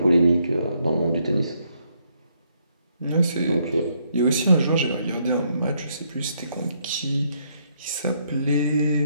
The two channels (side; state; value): both; inverted; correlation -0.73